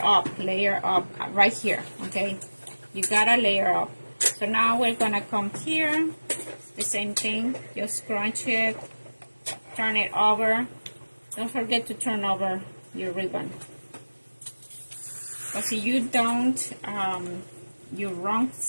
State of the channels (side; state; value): both; inverted; correlation -1.00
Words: up right here, okay? You gotta layer up. So now we're gonna come here, the same thing, just scrunch it, turn it over. Don't forget to turn over your ribbon. Because if you don't, your wrong